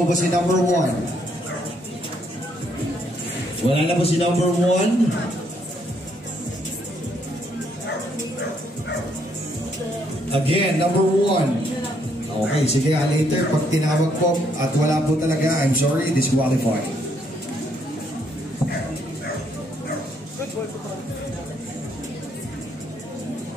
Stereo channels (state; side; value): normal; both; correlation 0.71